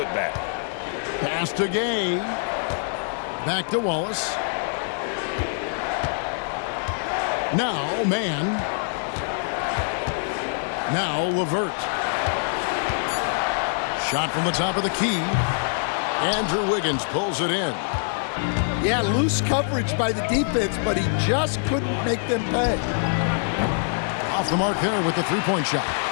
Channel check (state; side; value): silent; right; digital silence